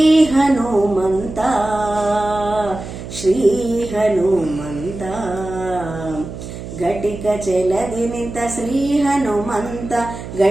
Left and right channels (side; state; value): right; noise; hum, 10 dB below the sound